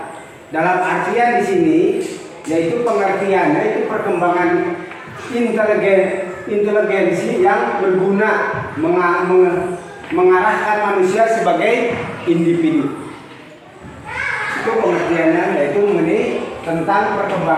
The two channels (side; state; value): both; identical; correlation 1.00